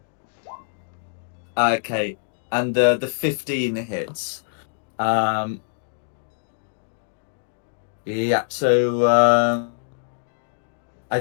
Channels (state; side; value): silent; right; digital silence